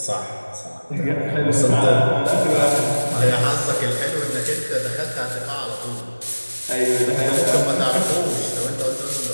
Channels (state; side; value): inverted; both; correlation -1.00